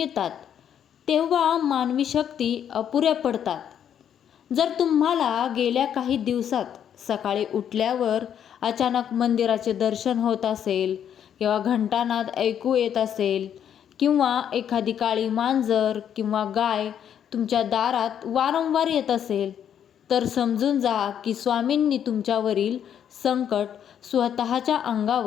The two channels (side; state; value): right; quieter; 9.1 dB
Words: तेव्हा मानवी शक्ती अपुऱ्या पडतात. जर तुम्हाला गेल्या काही दिवसात सकाळी उठल्यावर अचानक मंदिराचे दर्शन होत असेल किंवा घंटानाद ऐकू येत असेल किंवा एखादी काळी मांजर किंवा गाय तुमच्या दारात वारंवार येत असेल, तर समजून जा की स्वामींनी तुमच्यावरील संकट स्वतःच्या